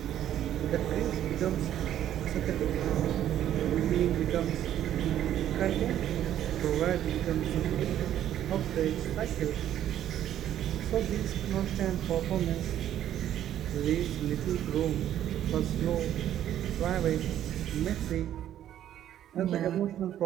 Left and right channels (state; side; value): quieter; left; 11.3 dB